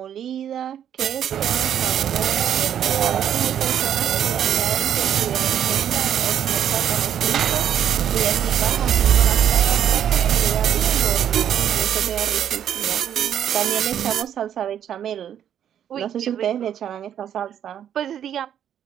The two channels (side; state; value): left; quieter; 9.7 dB